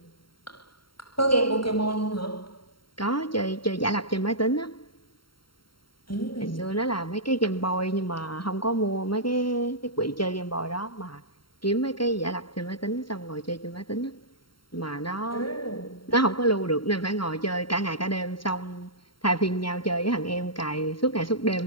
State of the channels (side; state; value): right; late; 0.73 ms